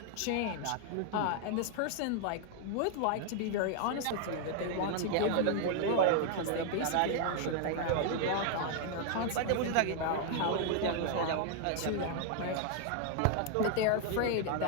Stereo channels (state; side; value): different; both; correlation 0.00